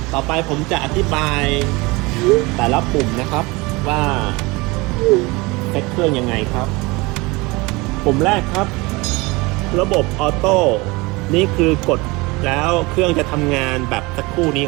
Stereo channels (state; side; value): quieter; left; 24.0 dB